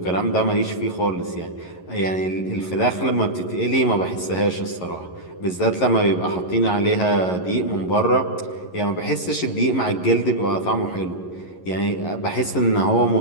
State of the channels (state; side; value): late; right; 11 ms